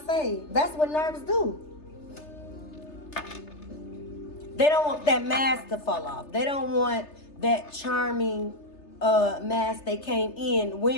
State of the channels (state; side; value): late; right; 3.3 ms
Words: say, that's what nerds do. They don't want that mask to fall off. They don't want that charming mask they came in